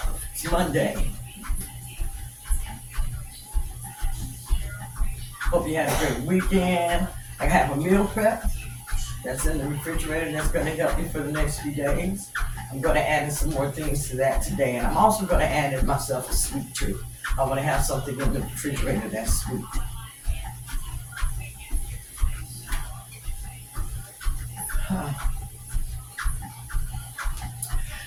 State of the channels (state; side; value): identical; both; correlation 1.00